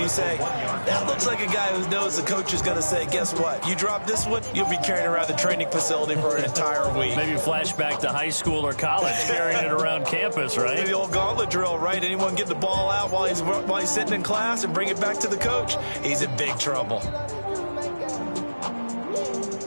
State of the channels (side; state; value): both; inverted; correlation -1.00